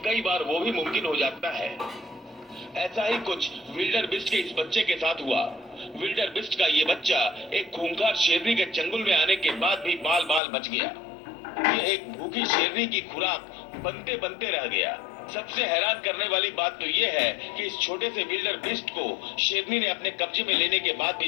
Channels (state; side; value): drops out; right; at 10.4 s